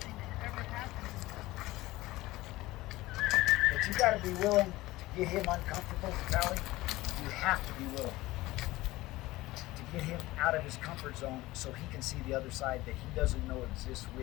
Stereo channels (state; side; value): quieter; right; 18.5 dB